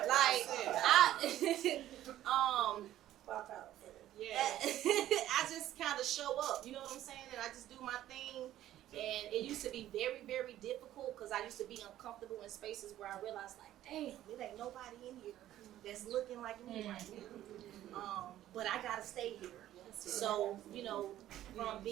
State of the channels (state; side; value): quieter; left; 13.1 dB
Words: saying? Like, Pop out. I just kind of show up. You know what I'm saying? And I just do my thing. And it used to be very, very difficult because I used to be uncomfortable in spaces where I realized, like, damn, there ain't nobody in here that's looking like me right now. But I gotta stay here. So, from